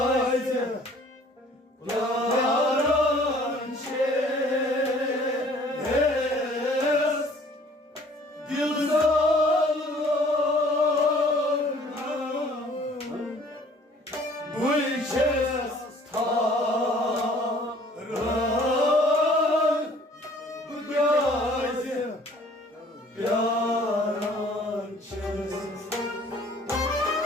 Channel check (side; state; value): both; normal; correlation 0.54